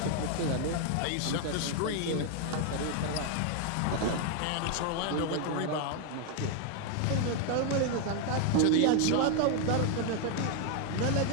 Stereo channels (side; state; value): both; different; correlation 0.00